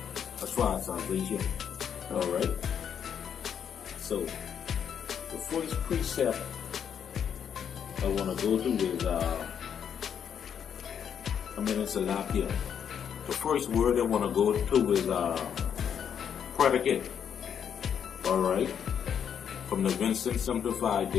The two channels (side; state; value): right; quieter; 8.2 dB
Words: Alright? So, the first precept I want to go to is, it's a lot here. The first word I want to go to is predicate. Alright? From the Winston Simplified